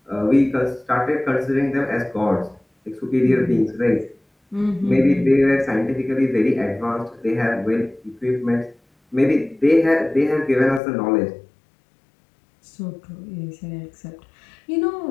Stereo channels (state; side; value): drops out; right; at 10.8 s